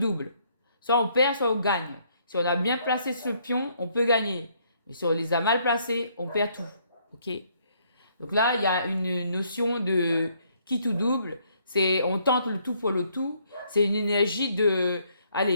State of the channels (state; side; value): inverted; both; correlation -0.68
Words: Soit on perd, soit on gagne. Si on a bien placé ce pion, on peut gagner. Mais si on les a mal placés, on perd tout. Ok? Donc là, il y a une notion de qui tout double. C'est on tente le tout pour le tout. C'est une énergie de